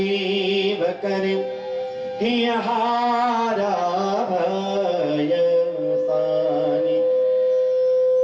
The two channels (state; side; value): identical; both; correlation 1.00